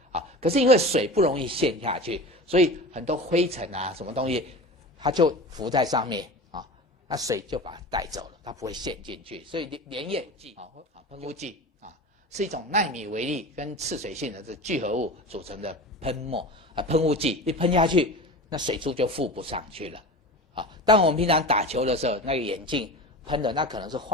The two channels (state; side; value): normal; both; correlation 0.32